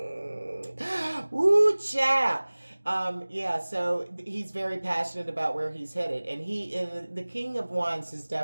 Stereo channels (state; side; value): inverted; both; correlation -1.00